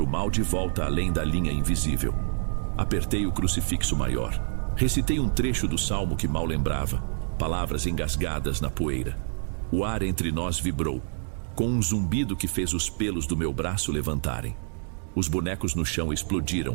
o mal de volta além da linha invisível. Apertei o crucifixo maior. Recitei um trecho do salmo que mal lembrava, palavras engasgadas na poeira. O ar entre nós vibrou, com um zumbido que fez os pelos do meu braço levantarem. Os bonecos no chão explodiram,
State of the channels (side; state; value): left; silent; digital silence